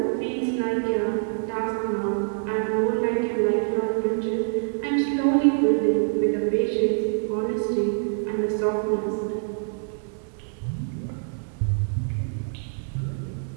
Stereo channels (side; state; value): left; silent; digital silence